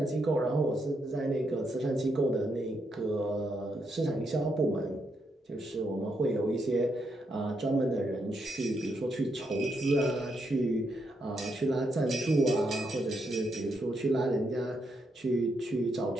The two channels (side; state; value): both; normal; correlation 0.79